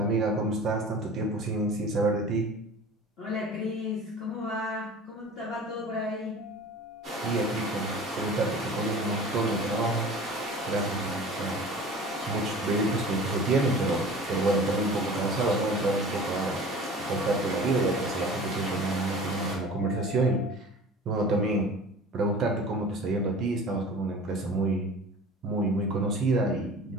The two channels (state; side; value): normal; both; correlation 0.41